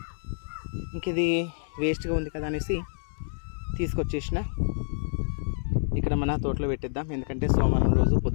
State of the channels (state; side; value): silent; right; 59 dB below the other